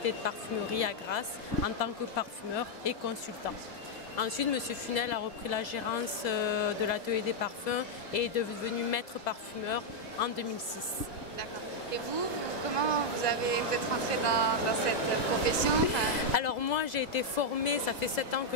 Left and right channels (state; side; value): late; right; 2.2 ms